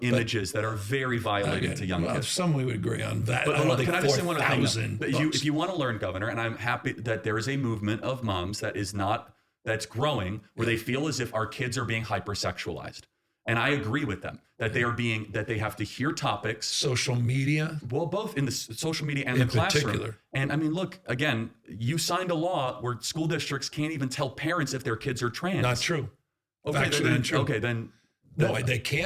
images that are very violating to young kids. Some we would agree on that. But can I just say one other thing? If you want to learn, Governor, and I'm happy that there is a movement of moms that's growing where they feel as if our kids are being hypersexualized. And I agree with them that they have to hear topics. Social media? Well, both in the social media and the classroom. Particular. And I mean, look, again, you signed a law where school districts can't even tell parents if their kids are trans. Not true. Factually untrue. Okay, then. No, they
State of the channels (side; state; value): both; identical; correlation 1.00